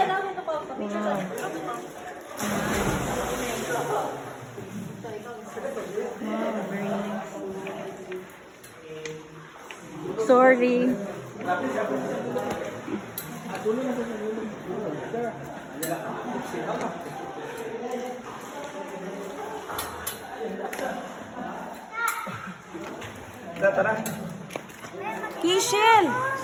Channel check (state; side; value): identical; both; correlation 1.00